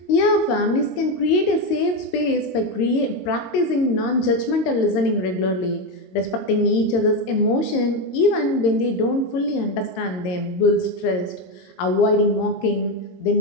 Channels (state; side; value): late; right; 22 ms